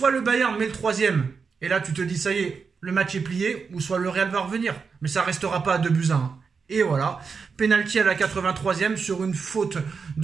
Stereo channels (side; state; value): left; quieter; 5.4 dB